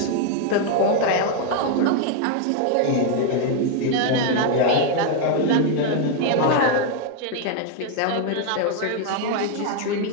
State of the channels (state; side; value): different; both; correlation 0.01